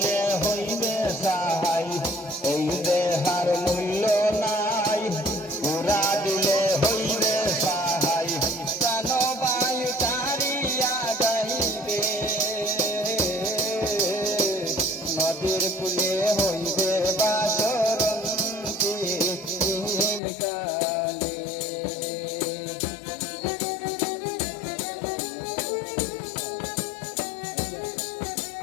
হইবে সাহাই এই দেহার মূল্য নাই পুরা দিলে হইবে সাহাই প্রাণ বায়ু তারিয়া যাইবে নদীর কূলে হইবে বাসরন্তি কালে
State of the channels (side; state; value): right; drops out; at 20.2 s